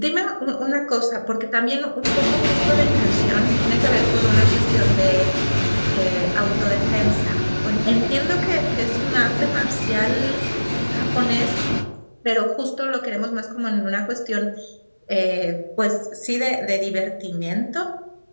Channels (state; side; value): inverted; both; correlation -1.00